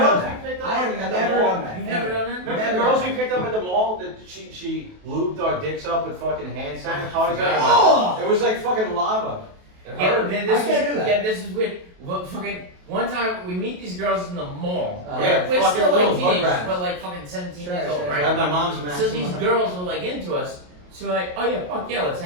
done we picked that. up I at have the never mall? done that. You've never done that? Remember Never the girls done we picked up at the mall that she lubed our dicks up with fucking hand sanitizer? Oh! It was like fucking lava. It Yeah, hurt. then this I can't was, do that. Yeah, this is weird. Well, fucking one time we meet these girls in the mall. Yeah, we're fucking still like little teenagers. butt We're like fucking 17 Sure, years old, sure. right? I had my mom's So maximum. these girls were like into us. So we're like, oh yeah, fuck yeah, let's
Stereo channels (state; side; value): late; left; 28 ms